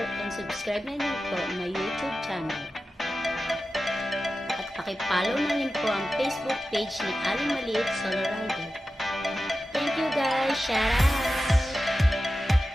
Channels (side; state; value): both; normal; correlation 0.93